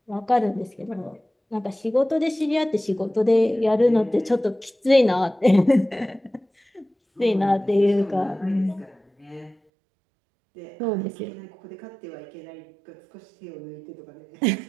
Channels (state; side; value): drops out; left; at 9.6 s